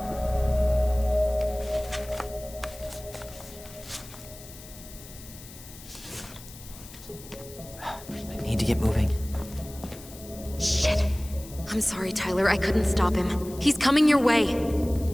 I need to get moving. Shit. I'm sorry, Tyler. I couldn't stop him. He's coming your way.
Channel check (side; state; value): left; noise; hiss, 17 dB below the sound